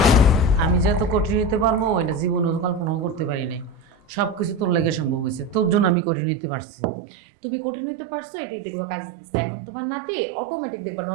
আমি যে এত কঠিন নিতে পারবো এটা জীবনে কল্পনাও করতে পারি নাই। সব কিছু তোর লেগে সম্ভব হয়েছে, তোর জন্য আমি কঠিন নিতে পারছি। তুমি কঠিন হইতে পারছো, এটাই দেখবো কাজ দিচ্ছে। এখন তোমার নাতি অটোমেটিক দেখবা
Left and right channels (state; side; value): drops out; left; at 6.0 s